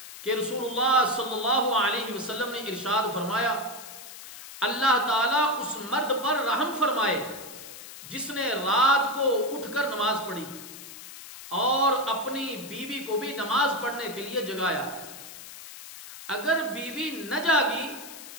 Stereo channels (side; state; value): left; noise; hiss, 14 dB below the sound